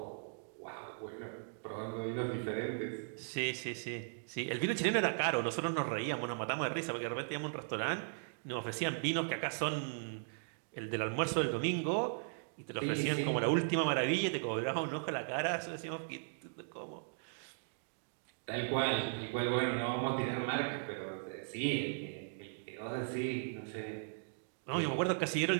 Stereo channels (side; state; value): left; silent; digital silence